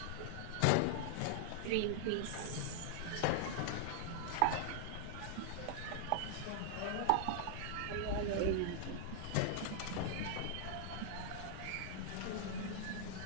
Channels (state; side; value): different; both; correlation -0.01